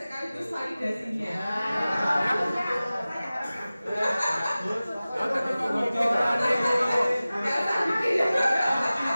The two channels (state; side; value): inverted; both; correlation -0.97